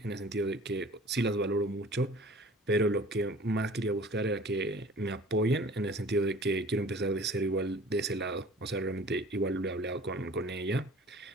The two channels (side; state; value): both; normal; correlation 0.46